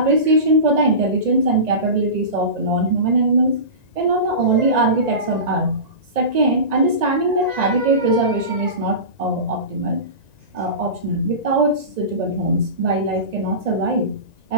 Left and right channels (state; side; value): late; left; 1.9 ms